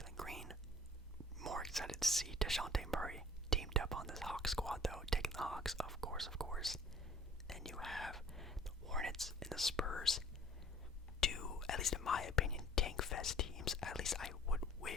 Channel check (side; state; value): both; normal; correlation 0.51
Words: Green. More excited to see DeJounte Murray teamed up on this Hawks squad, though, taking the Hawks, of course. Then you have the Hornets and the Spurs. Two, at least in my opinion, tank fest teams. At least I would